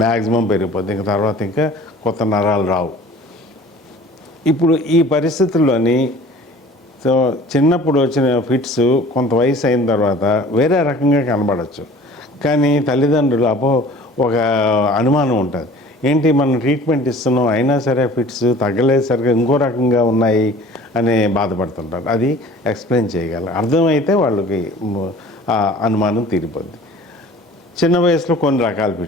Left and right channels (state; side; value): normal; both; correlation 0.46